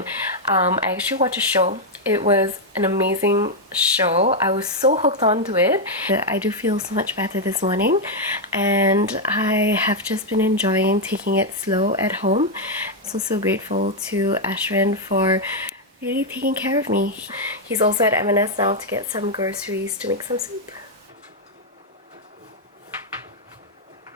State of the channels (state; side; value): normal; both; correlation 0.00